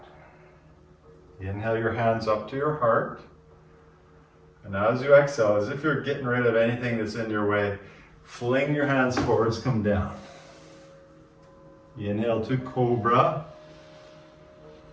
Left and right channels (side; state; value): both; identical; correlation 1.00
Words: Inhale your hands up to your heart. And as you exhale, as if you're getting rid of anything that's in your way, fling your hands forwards, come down. Inhale to Cobra.